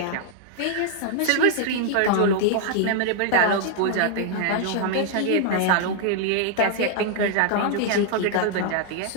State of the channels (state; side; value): different; both; correlation -0.01